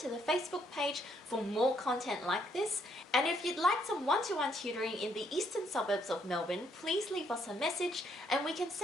to the Facebook page for more content like this. And if you'd like some one-to-one tutoring in the eastern suburbs of Melbourne, please leave us a message and we can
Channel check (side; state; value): both; normal; correlation 0.71